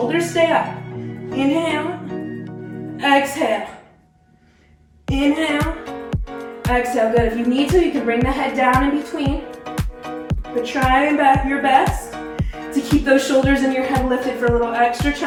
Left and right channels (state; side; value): identical; both; correlation 1.00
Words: stay up. Inhale. Exhale. Inhale. Exhale. Good. If you need to, you can bring the head down in between. But try your best to keep those shoulders and your head lifted for a little extra